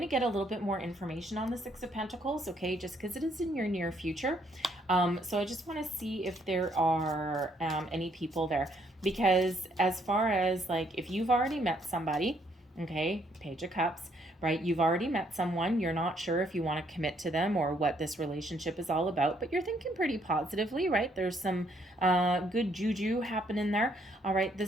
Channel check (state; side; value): normal; both; correlation 0.69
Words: to get a little bit more information on the Six of Pentacles, okay, just because it is in your near future. So I just want to see if there are any people there. Because as far as, like, if you've already met somebody, okay, Page of Cups, right? You've already met someone. You're not sure if you want to commit to them or what this relationship is all about, but you're thinking pretty positively, right? There's some good juju happening there. All right, the